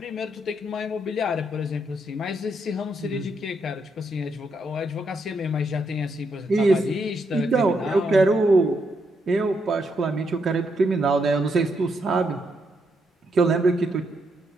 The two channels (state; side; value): normal; both; correlation 0.78